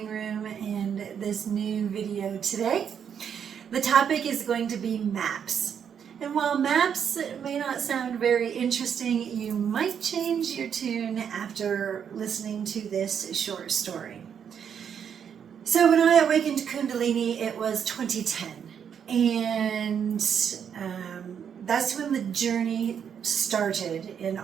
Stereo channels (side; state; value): left; quieter; 7.9 dB